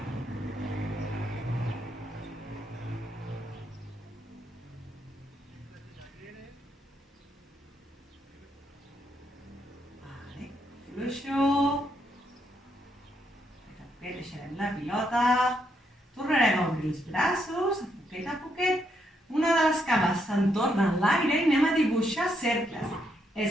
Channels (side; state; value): both; normal; correlation 0.77